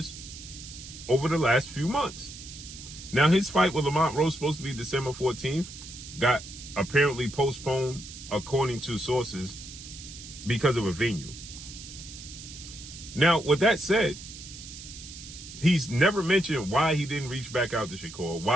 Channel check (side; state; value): right; noise; hiss, 14 dB below the sound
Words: over the last few months. Now, his fight with Lamont Roach, supposed to be December 14th, got apparently postponed, according to sources, because of a venue. Now, with that said, he's never mentioned why he didn't reach back out to Shakur,